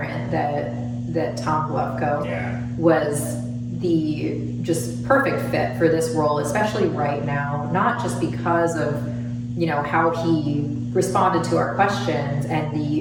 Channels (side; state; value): both; identical; correlation 1.00